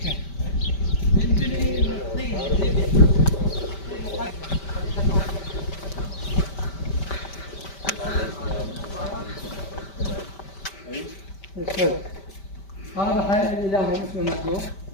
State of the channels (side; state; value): right; late; 5.1 ms